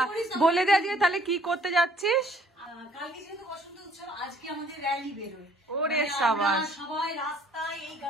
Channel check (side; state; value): both; normal; correlation 0.59